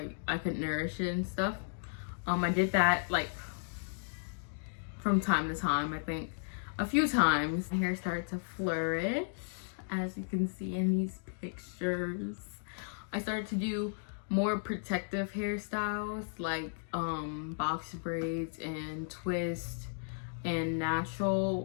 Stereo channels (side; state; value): right; silent; digital silence